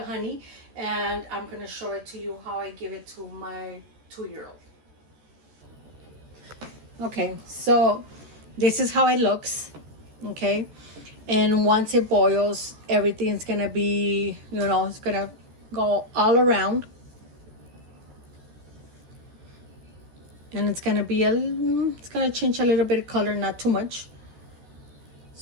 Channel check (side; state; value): left; late; 14 ms